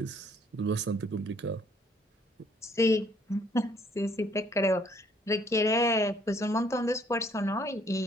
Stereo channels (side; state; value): both; normal; correlation 0.63